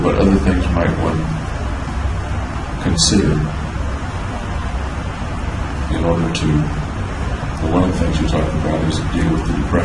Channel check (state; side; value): identical; both; correlation 1.00